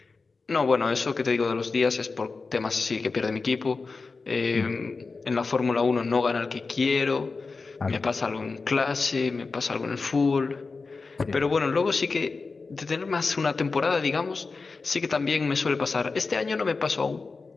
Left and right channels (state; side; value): quieter; right; 4.2 dB